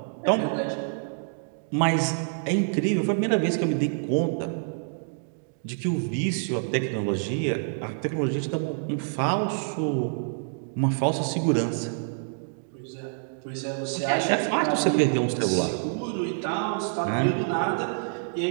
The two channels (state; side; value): silent; left; digital silence